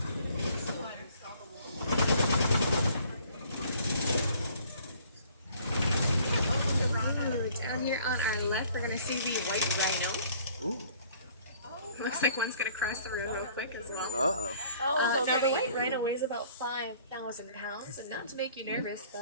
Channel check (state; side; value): inverted; both; correlation -0.56